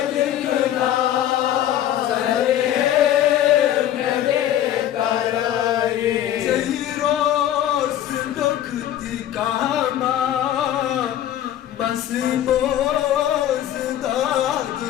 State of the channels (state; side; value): quieter; right; 11.7 dB